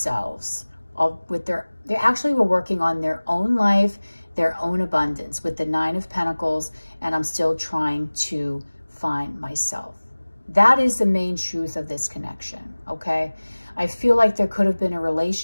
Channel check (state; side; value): inverted; both; correlation -1.00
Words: They actually were working on their own life, their own abundance with the 9 of Pentacles, and I'm still trying to find myself. That is the main truth of this connection, okay? I feel like there could have been a